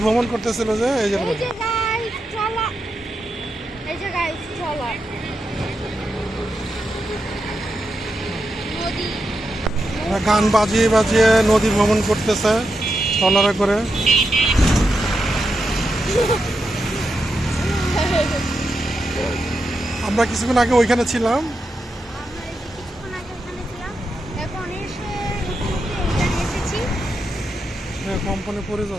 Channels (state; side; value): normal; both; correlation 0.86